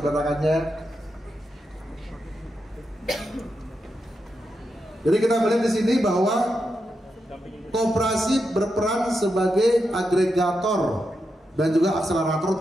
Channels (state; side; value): normal; both; correlation 0.86